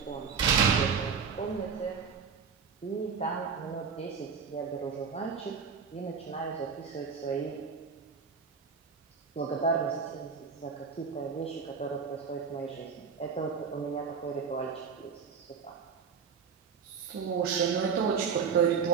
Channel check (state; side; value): quieter; left; 6.2 dB